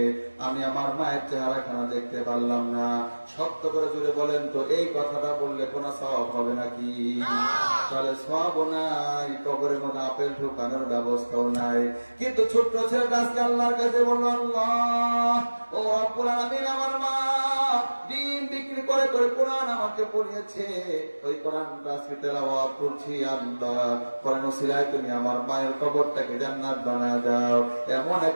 আমি আমার মায়ের চেহারাখানা দেখতে পারলাম না। সত্য করে জুড়ে বলেন তো, এই কথাটা বললে কোনো সওয়াব হবে নাকি? তাহলে সওয়াবও নাই, কবরের মধ্যে আপেল ঢোকানোর ব্যবস্থাও নাই। কিন্তু ছোট্ট ছেলেটা আজকে আল্লাহর কাছে বলল, আল্লাহ ও রব্বুল আলামিন, আমার মা দিন বিক্রি করে করে কোরআন আমাকে পড়িয়েছে, ওই কোরআনটা আজকে তেলাওয়াত করছি। আল্লাহ কোরআন ওসিলায় তুমি আমার মায়ের কবরটাকে জান্নাত বানায় দাও। এমন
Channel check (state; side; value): inverted; both; correlation -1.00